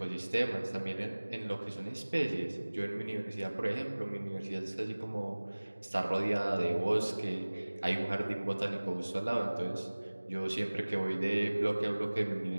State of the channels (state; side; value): inverted; both; correlation -1.00